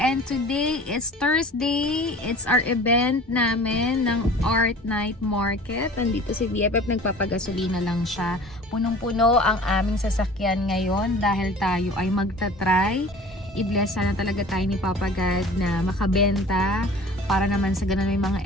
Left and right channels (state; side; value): normal; both; correlation 0.44